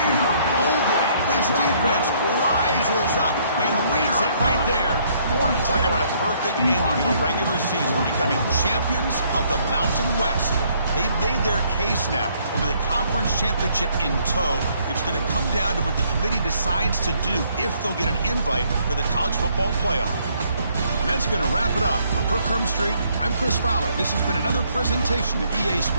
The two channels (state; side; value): inverted; both; correlation -0.67